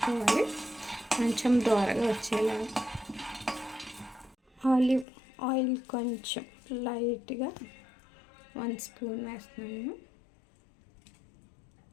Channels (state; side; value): drops out; right; at 5.1 s